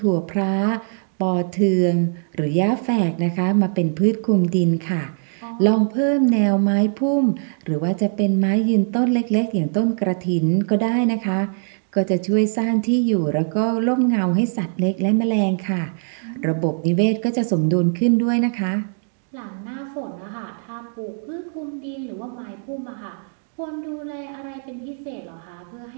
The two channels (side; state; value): left; silent; 61 dB below the other